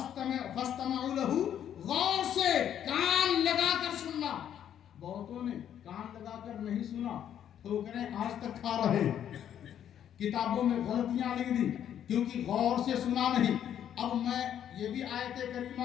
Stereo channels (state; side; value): quieter; right; 9.9 dB